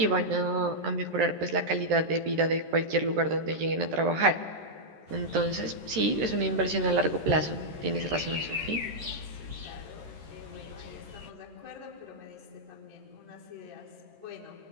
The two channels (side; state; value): left; late; 13 ms